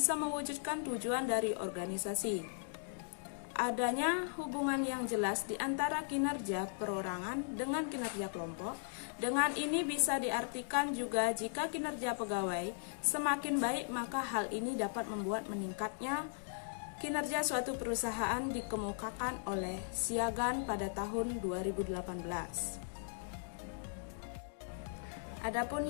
mewujudkan tujuan dari organisasi. Adanya hubungan yang jelas di antara kinerja perorangan dengan kinerja kelompok. Dengan ini bisa diartikan juga jika kinerja pegawai semakin baik, maka hal ini dapat membuat meningkatnya kinerja suatu perusahaan, dikemukakan oleh Siagan pada tahun 2018. Adapun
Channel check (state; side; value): silent; right; digital silence